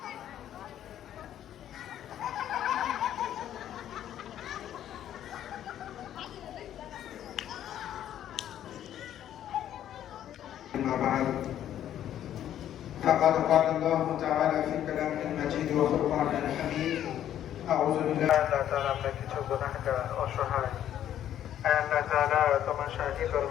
فقد قال الله تعالى في كلامه المجيد وفرقانه الحميد أعوذ بالله আল্লাহ তাআলা আমরা কিছু গুনাহগার অসহায়, আল্লাহ তাআলা তোমার শাহী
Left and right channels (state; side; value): quieter; right; 11.1 dB